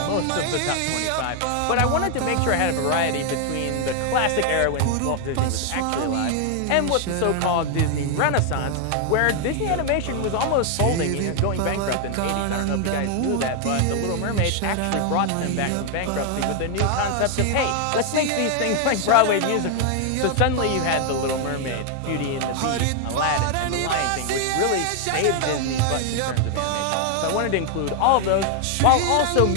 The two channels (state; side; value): different; both; correlation 0.00